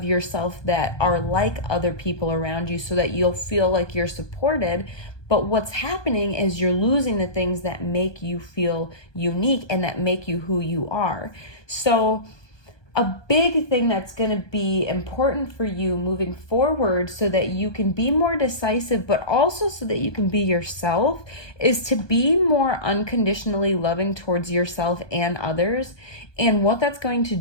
yourself that are like other people around you so that you'll feel like you're supported. But what's happening is you're losing the things that make you feel unique and that make you who you are. So a big thing that's going to be important for you moving forward so that you can be more decisive, but also so that you can be yourself, is to be more unconditionally loving towards yourself and others. And what that's going to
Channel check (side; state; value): right; late; 1.2 ms